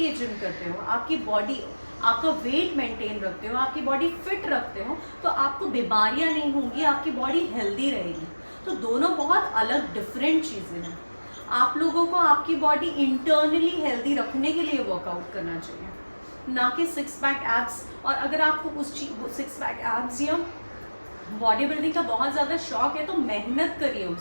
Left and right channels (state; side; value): inverted; both; correlation -1.00